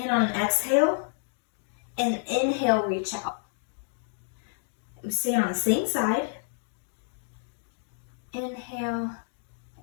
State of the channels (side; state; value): right; silent; digital silence